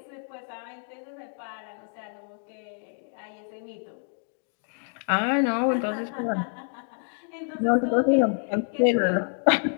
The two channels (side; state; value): right; silent; 59 dB below the other